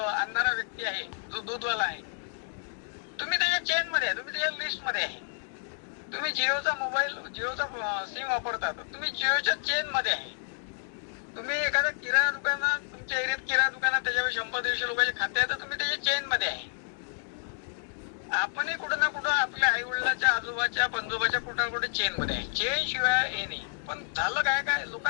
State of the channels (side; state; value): right; silent; digital silence